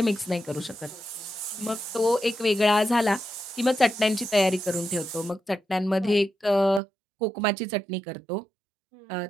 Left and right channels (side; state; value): left; drops out; at 6.8 s